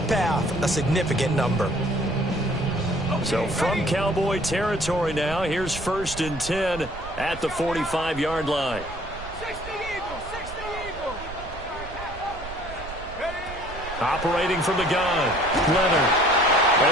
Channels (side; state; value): right; noise; rumble, 13 dB below the sound